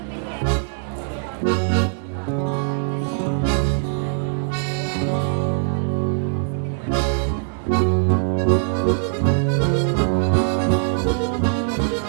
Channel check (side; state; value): left; silent; 64 dB below the other